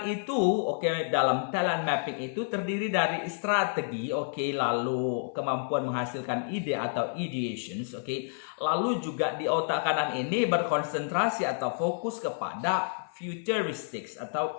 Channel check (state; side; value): silent; right; 58 dB below the other